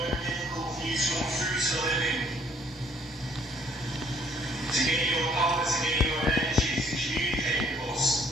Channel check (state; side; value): normal; both; correlation 0.62